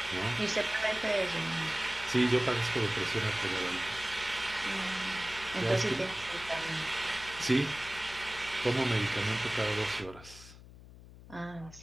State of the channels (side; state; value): left; noise; hum, 18 dB below the sound